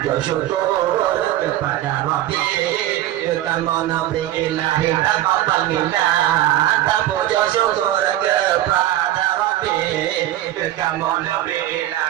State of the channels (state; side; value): quieter; left; 13.9 dB